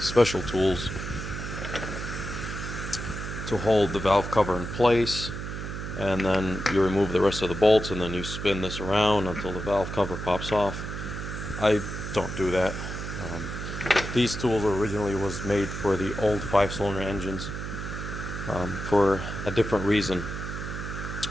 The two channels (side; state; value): right; noise; hum, 6 dB below the sound